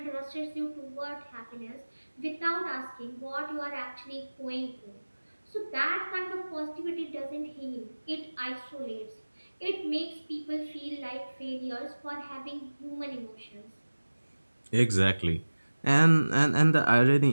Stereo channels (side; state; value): both; inverted; correlation -1.00